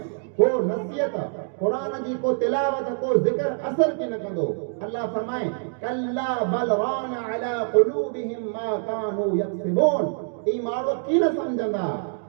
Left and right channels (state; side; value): silent; left; digital silence